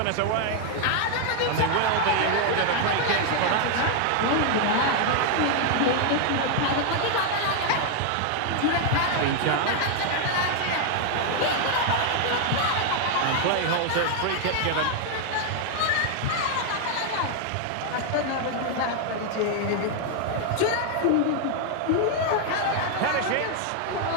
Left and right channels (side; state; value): both; different; correlation 0.00